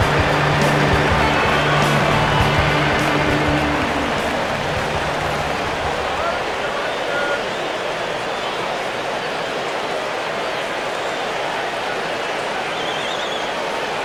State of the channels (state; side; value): identical; both; correlation 1.00